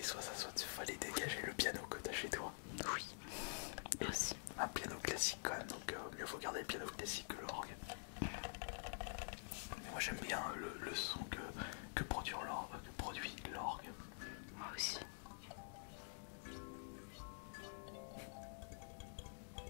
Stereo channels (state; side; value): silent; right; digital silence